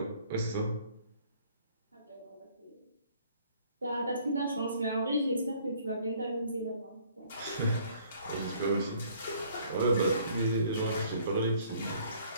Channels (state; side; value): inverted; both; correlation -0.59